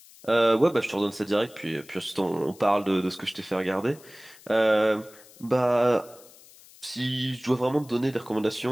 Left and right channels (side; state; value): left; noise; hiss, 23 dB below the sound